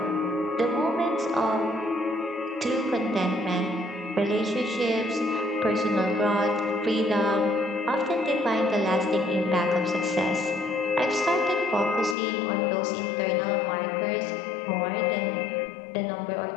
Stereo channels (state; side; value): drops out; right; at 12.2 s